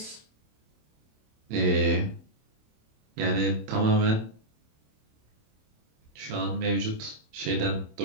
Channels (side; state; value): left; late; 27 ms